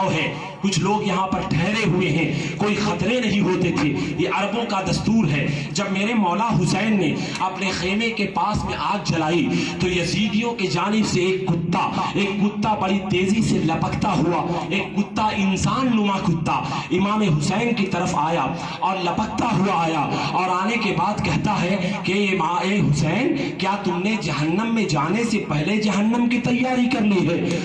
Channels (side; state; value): both; identical; correlation 1.00